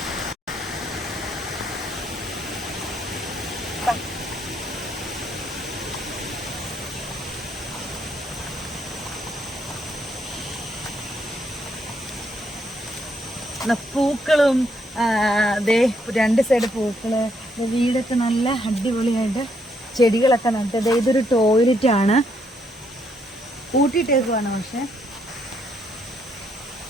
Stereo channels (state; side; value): normal; both; correlation 0.74